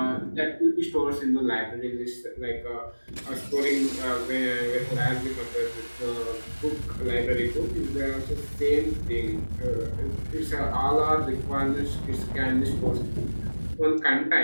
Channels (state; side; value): inverted; both; correlation -1.00